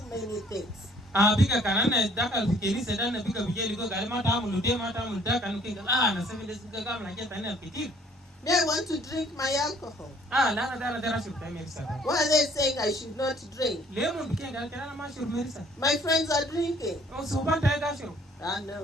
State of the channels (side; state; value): both; normal; correlation 0.59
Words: many things. biga kanana dakal fikini sedana biga bijeli go gal mata amulu de mata amulu da kanu kinga na 7 days biga gam na keta ina ketir They want to drink my alcohol. lana dana dara shur ta merisa Why are they saying I should not drink? lemon bikenga kana ma shur merisa My friends are drinking. so banta ga shur